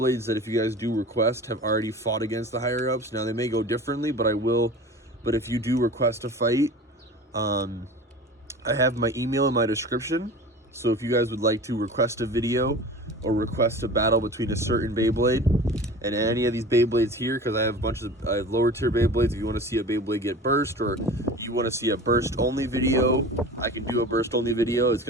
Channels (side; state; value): both; normal; correlation 0.37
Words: that if you guys do request have already fought against the higher ups. Now they may go differently, but but if you do request a fight, I have my email in my description. So if you guys would like to request a video or request a battle between a certain Beyblade and any of these Beyblades here, because I have I have lower tier Beyblades. If you want to see a Beyblade get burst, or you want to see a burst only video, I can do a burst only video. It's